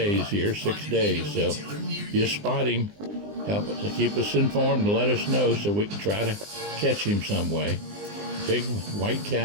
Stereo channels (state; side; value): late; left; 20 ms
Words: here, 6 days. So if you spot him, help to keep us informed and let us know so we can try to catch him some way. Big white